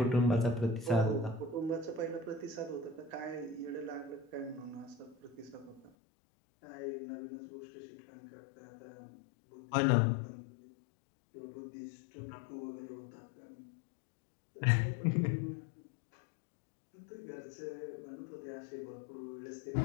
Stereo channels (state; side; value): drops out; right; at 5.9 s